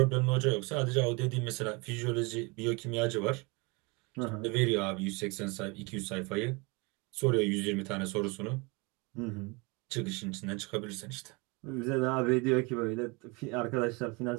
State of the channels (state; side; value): quieter; left; 28.2 dB